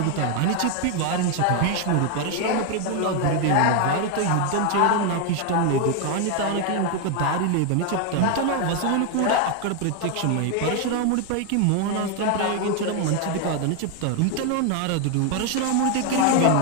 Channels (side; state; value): both; different; correlation 0.01